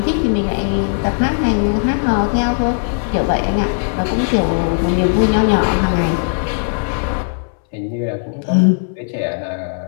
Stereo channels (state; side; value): silent; right; 68 dB below the other